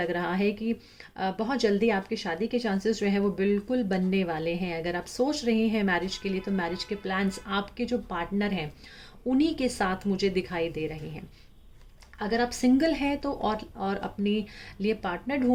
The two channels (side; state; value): both; identical; correlation 1.00